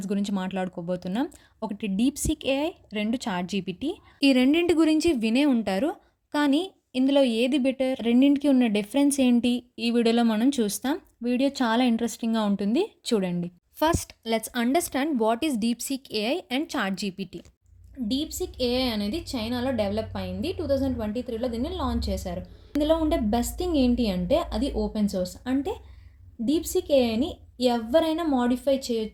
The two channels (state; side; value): identical; both; correlation 1.00